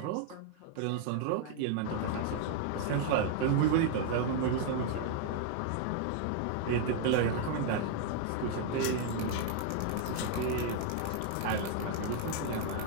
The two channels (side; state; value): both; different; correlation 0.00